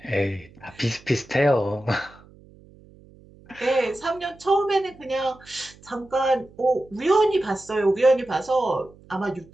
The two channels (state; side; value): noise; right; hum, 25 dB below the sound